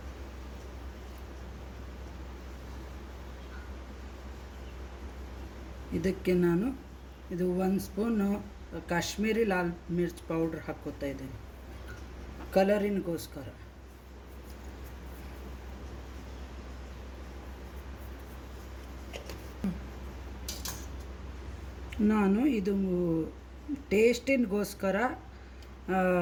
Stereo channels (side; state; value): both; identical; correlation 1.00